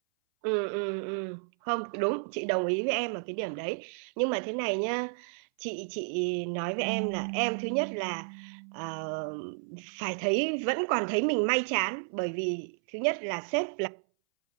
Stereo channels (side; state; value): left; silent; 57 dB below the other